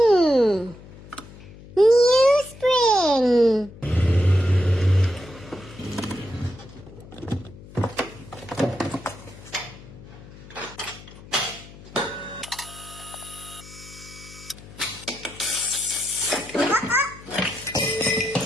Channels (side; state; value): left; noise; hum, 18 dB below the sound